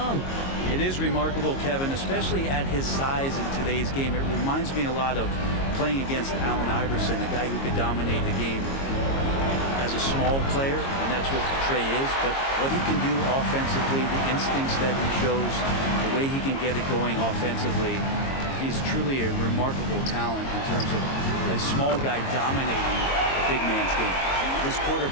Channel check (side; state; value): right; late; 22 ms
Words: It is remarkable, Kevin, especially at his size in today's game. It reminds me a lot of playing against Allen Iverson, a guy who could dominate the game as a small player, and that's what Trae is. But what he can do offensively, the instincts that he shows, the way he can get it going offensively, he's truly a remarkable talent in terms of a small guy dominating a big man's game. This quarter